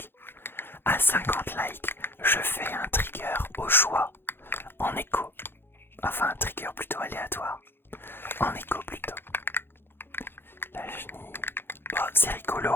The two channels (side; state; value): right; late; 0.10 ms